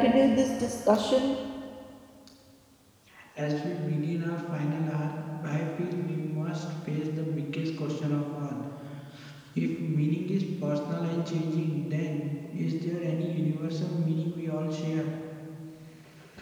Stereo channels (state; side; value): identical; both; correlation 1.00